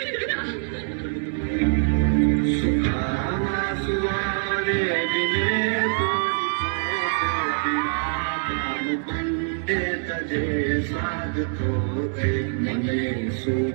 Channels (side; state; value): left; silent; digital silence